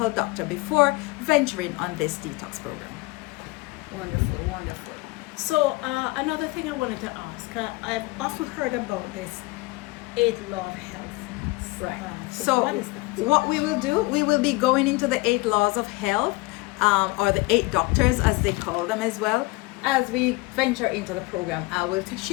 doctor before venturing on this detox program. Wonderful, wonderful. So another thing I wanted to ask, I've often heard about this 8 law of health. Right. So what is that? What we will do, we will be going into the 8 laws of health, or the 8 doctors as they call them as well. As we venture into the program,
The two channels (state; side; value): quieter; right; 22.7 dB